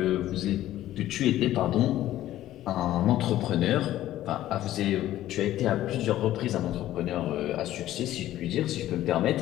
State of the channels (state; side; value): quieter; right; 13.8 dB